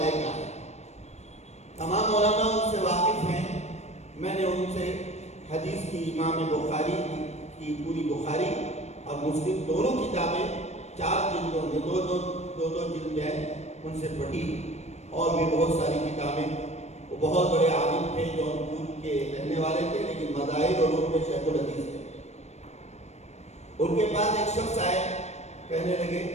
کا ہے۔ تمام مولانا ان سے واقف ہیں، میں نے ان سے حدیث کی امام بخاری کی پوری بخاری اور مسلم دونوں کتابیں 4 جلدوں میں دو جلد ہیں ان سے پڑھی، اور بھی بہت ساری کتابیں۔ وہ بہت بڑے عالم تھے، جونپور کے رہنے والے تھے، لیکن مذاہب اور علوم میں شیخ الحدیث تھے۔ ان کے پاس ایک شخص آئے، کہنے لگے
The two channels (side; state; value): right; late; 0.32 ms